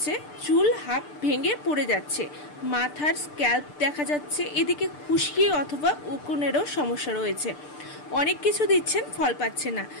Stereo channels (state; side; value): late; right; 6.7 ms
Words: চুল হাফ ভেঙে পড়ে যাচ্ছে, মাথার স্ক্যাল্প দেখা যাচ্ছে, এদিকে খুশকি অথবা উকুনেরও সমস্যা রয়েছে। অনেক কিছু দিচ্ছেন, ফল পাচ্ছে না,